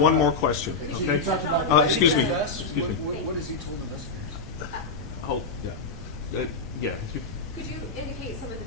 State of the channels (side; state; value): right; quieter; 4.0 dB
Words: more question. Chief, you talked about Excuse me. What has he told investigators? Oh, yeah. Yeah, if you Could you indicate some of